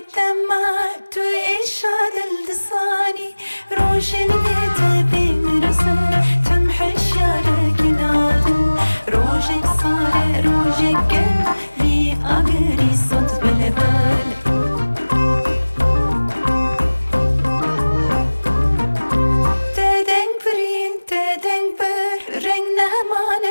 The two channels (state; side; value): inverted; both; correlation -1.00